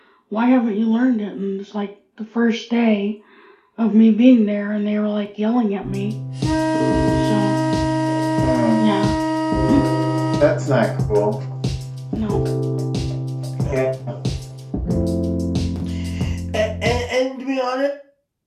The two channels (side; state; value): both; identical; correlation 1.00